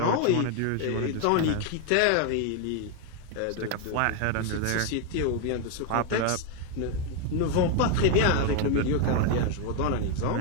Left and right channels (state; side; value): different; both; correlation 0.01